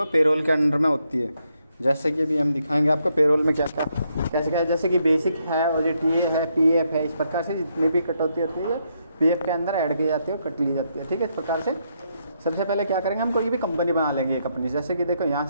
पेरोल के अंडर में होती है। जैसे कि अभी हम दिखाएंगे आपको पेरोल में क्या क्या कैसे क्या है। जैसे कि बेसिक है, ओजीटी है, पीएफ है, इस प्रकार से जितनी भी कटौती होती है पीएफ के अंदर ऐड की जाती है और कट ली जाती है। ठीक है, इस प्रकार से सबसे पहले क्या करेंगे, हम कोई भी कंपनी बना लेंगे एक अपनी। जैसे कि देखो यहाँ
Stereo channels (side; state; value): both; inverted; correlation -0.78